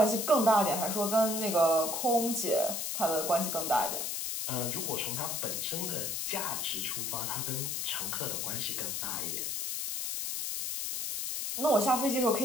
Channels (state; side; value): noise; left; hiss, 2 dB below the sound